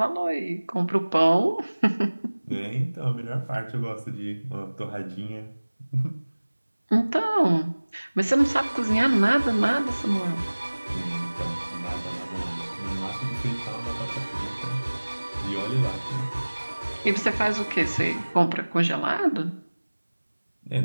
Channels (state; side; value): inverted; both; correlation -1.00